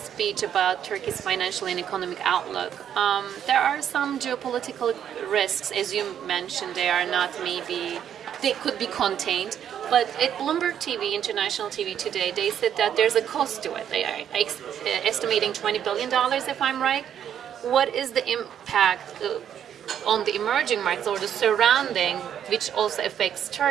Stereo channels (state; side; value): quieter; left; 9.4 dB